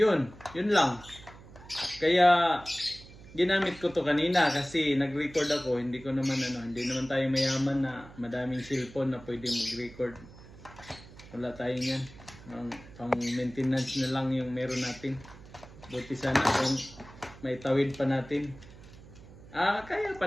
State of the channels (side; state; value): right; noise; hum, 19 dB below the sound